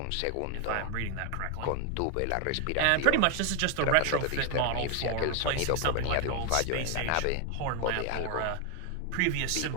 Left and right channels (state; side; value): different; both; correlation 0.01